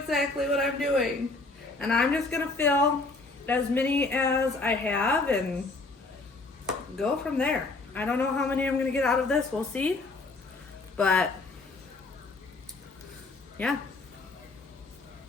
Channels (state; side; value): quieter; right; 3.5 dB